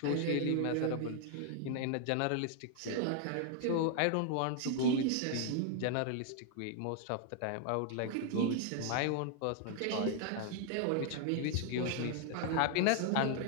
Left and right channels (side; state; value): both; different; correlation 0.00